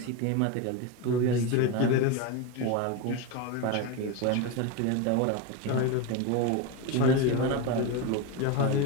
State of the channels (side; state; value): both; different; correlation 0.04